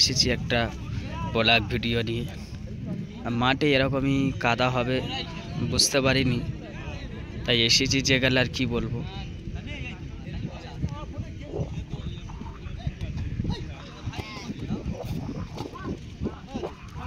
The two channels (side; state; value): both; identical; correlation 1.00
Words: একটা ব্লগ ভিডিও নিয়ে। মাঠে এরকমই কাদা হবে বুঝতে পারিনি, তাই এসেছি যে গেলে আর কি বলবো।